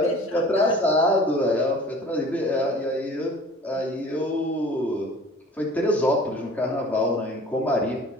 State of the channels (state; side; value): normal; both; correlation 0.45